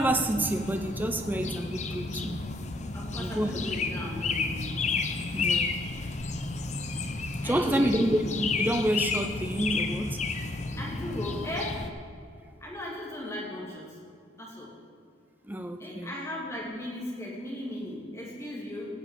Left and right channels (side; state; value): both; normal; correlation 0.70